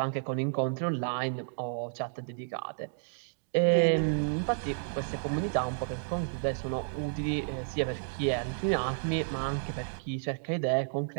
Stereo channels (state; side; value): silent; left; digital silence